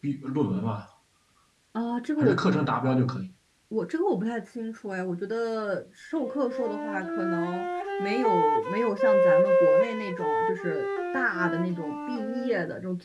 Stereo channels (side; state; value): both; identical; correlation 1.00